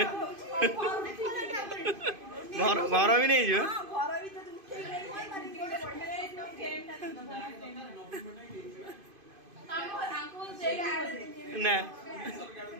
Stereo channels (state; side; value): late; left; 2.5 ms